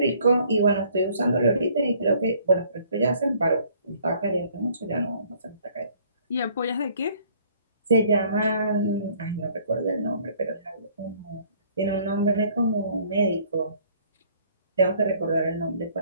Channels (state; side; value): inverted; both; correlation -0.59